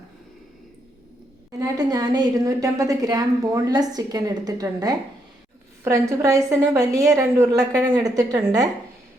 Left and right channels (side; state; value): both; normal; correlation 0.77